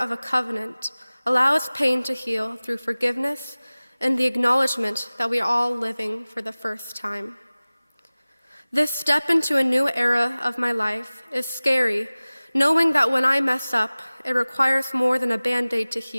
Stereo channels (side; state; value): both; inverted; correlation -0.99